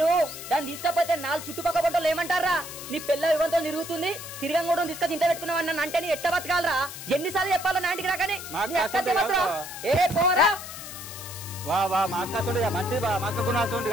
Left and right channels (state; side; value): noise; left; hiss, 11 dB below the sound